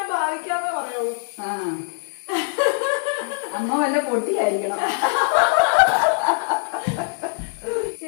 ഭാവിക്കാന്നേ പറയുള്ളൂ. അമ്മ വല്ല പൊട്ടിയായിരിക്കണം.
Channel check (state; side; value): silent; right; digital silence